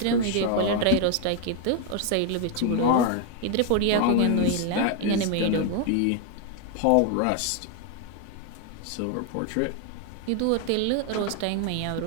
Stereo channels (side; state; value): both; different; correlation 0.01